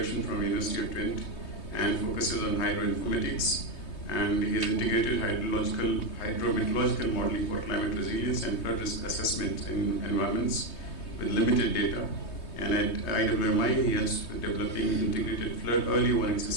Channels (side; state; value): right; late; 3.2 ms